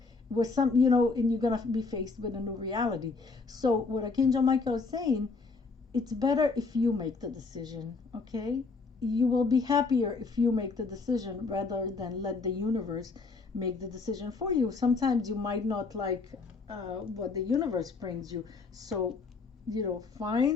With some, and you're gonna be faced with a new reality. So what Archangel Michael is saying, it's better if you make the decision, okay? You will be happier if you make the decision rather than let the universe make the decision for you. Sometimes you might not like what the universe brings you. So,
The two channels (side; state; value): right; quieter; 4.2 dB